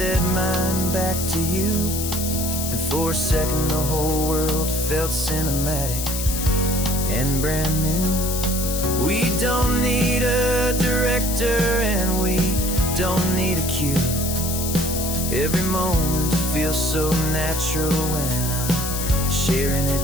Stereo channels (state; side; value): noise; left; hiss, 4 dB below the sound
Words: mine back to you. And for a second the whole world felt cinematic and brand new. We don't need a director and we don't need a cue. Every moment feels so natural when I'm sharing